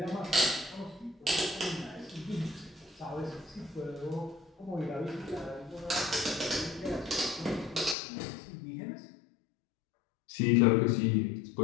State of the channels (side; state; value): right; drops out; at 8.0 s